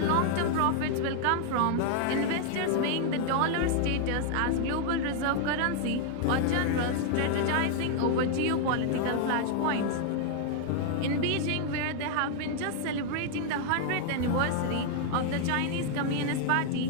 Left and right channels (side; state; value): both; different; correlation 0.00